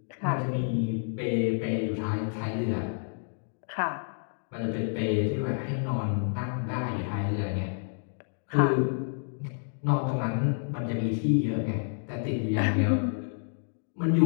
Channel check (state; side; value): silent; right; digital silence